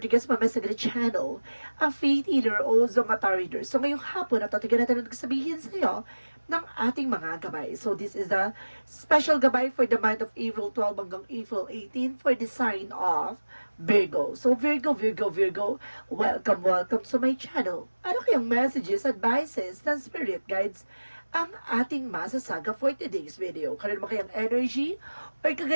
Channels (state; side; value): inverted; both; correlation -1.00